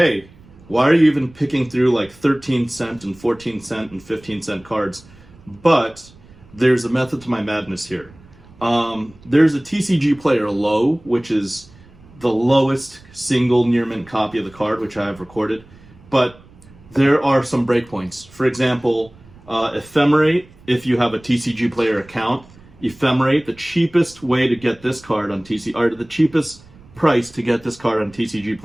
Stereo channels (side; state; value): right; noise; rumble, 24 dB below the sound